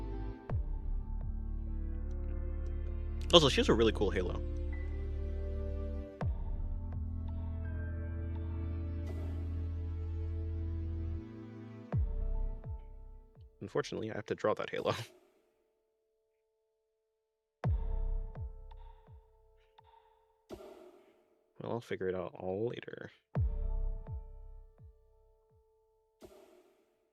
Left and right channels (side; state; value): both; identical; correlation 1.00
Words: Also, she has a really cool halo. Unfortunately, I have to draw that halo. Well, I'll figure it out all later.